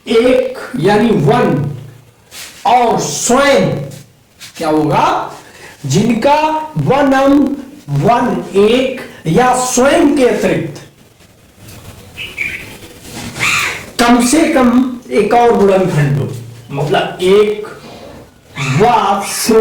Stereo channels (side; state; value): both; identical; correlation 1.00